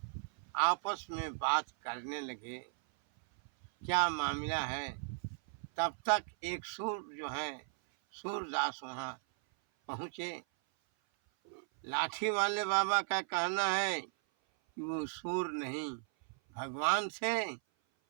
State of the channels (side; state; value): left; silent; 53 dB below the other